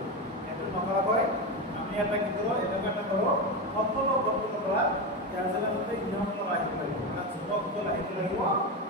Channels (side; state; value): both; normal; correlation 0.16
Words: এত নকরা হয় আমি এটা কি করব এটা একটা করব সম্পূর্ণ গঠন করা ইয়ার জন্য মধ্যে নিয়মগুলো রাখতে লাগিব মানে যুবকগুলো রাখতে লাগিব